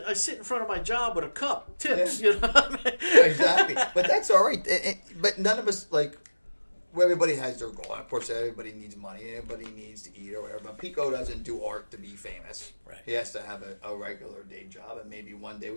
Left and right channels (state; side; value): inverted; both; correlation -1.00